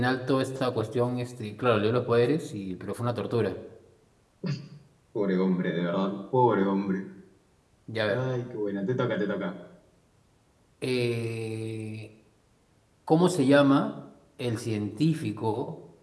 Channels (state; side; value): identical; both; correlation 1.00